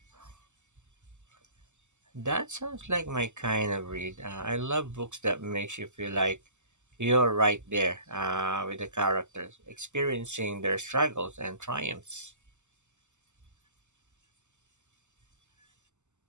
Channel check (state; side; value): late; left; 0.84 ms